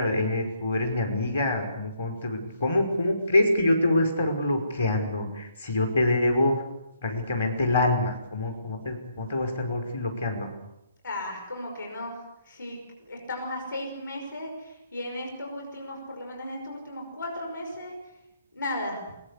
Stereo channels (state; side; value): inverted; both; correlation -0.71